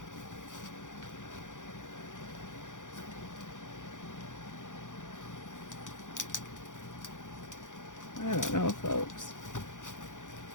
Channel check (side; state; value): right; late; 0.87 ms